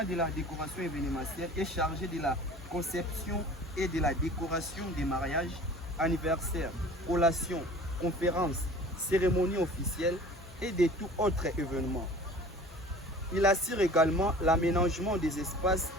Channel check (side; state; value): both; normal; correlation 0.44